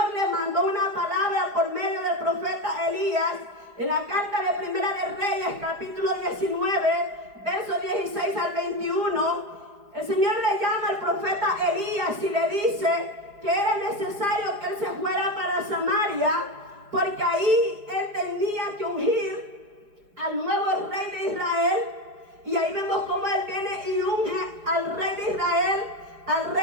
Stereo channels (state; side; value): late; left; 4.9 ms